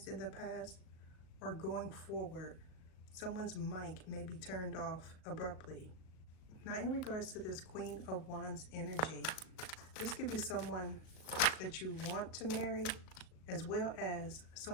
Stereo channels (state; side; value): late; right; 38 ms